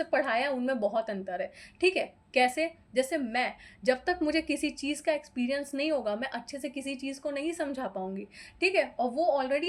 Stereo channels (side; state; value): both; identical; correlation 1.00